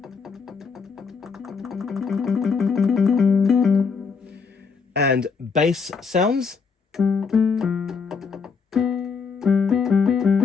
And bass sounds.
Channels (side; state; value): right; quieter; 5.4 dB